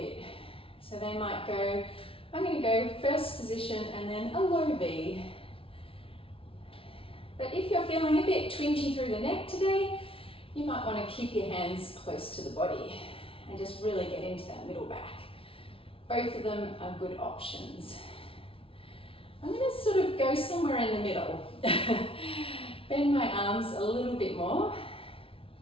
So they might go, I'm going to go first position and then a low V. But if you're feeling a bit twingy through the neck today, you might want to keep your hands close to the body and just really get into that middle back. Both of them are good options. I'm going to sort of go somewhere in the middle. Bend my arms a little bit more.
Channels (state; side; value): late; right; 0.26 ms